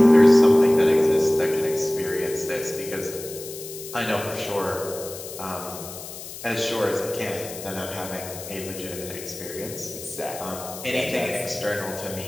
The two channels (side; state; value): left; noise; hiss, 12 dB below the sound